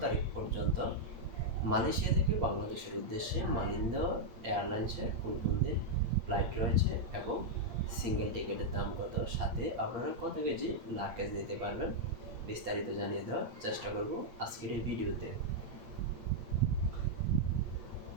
তারিখ পর্যন্ত মালয়েশিয়া থেকে বাংলাদেশের উদ্দেশ্যে মালিন্দা এয়ারলাইন্সের কোন কোন দিন ফ্লাইট রয়েছে এবং সিঙ্গেল টিকিটের দাম কত, সাথে আপনারা কত কেজি লাগেজ নিতে পারবেন, বিস্তারিত জানিয়ে দেওয়ার চেষ্টা করব আজকের এই ভিডিওতে।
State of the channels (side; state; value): left; late; 8.5 ms